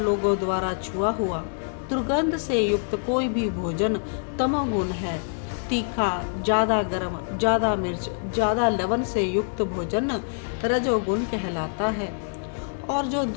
द्वारा छुआ हुआ दुर्गंध से युक्त कोई भी भोजन तमोगुण है। तीखा, ज़्यादा गर्म, ज़्यादा मिर्च, ज़्यादा लवण से युक्त भोजन रजोगुण कहलाता है। और जो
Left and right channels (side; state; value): right; silent; digital silence